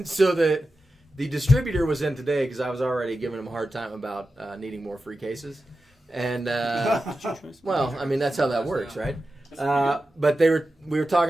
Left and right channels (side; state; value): both; normal; correlation 0.92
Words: so the distributor was in today because I was already giving him a hard time about needing more free cases, and well, I mean that's how that works, right? But we were